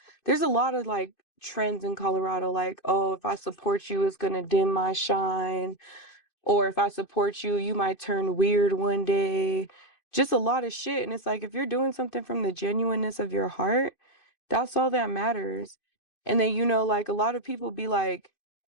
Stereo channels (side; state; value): right; late; 2.5 ms